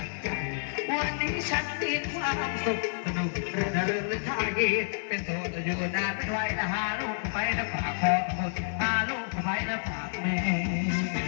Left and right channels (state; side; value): silent; right; digital silence